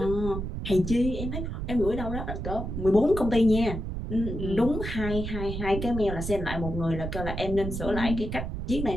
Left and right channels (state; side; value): noise; right; rumble, 5 dB below the sound